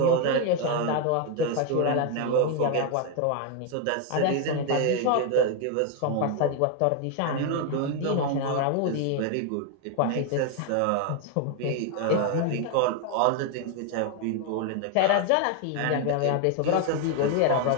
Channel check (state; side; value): different; both; correlation 0.01